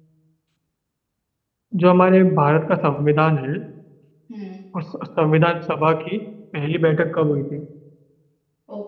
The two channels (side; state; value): both; identical; correlation 1.00